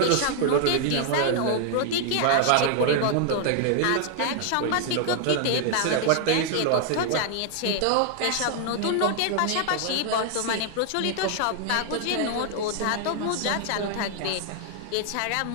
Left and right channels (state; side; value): different; both; correlation 0.00